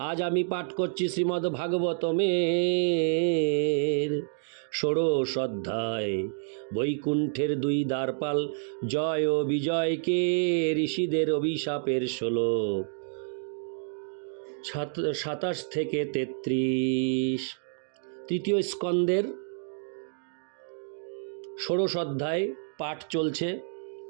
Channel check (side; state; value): left; silent; digital silence